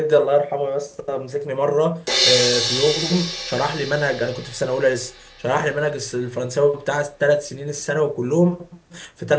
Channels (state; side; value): identical; both; correlation 1.00